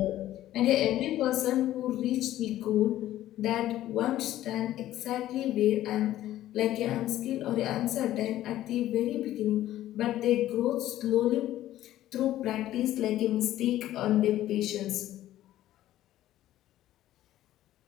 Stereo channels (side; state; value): right; quieter; 13.7 dB